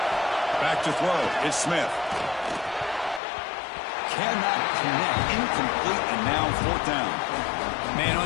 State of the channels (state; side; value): drops out; right; at 3.2 s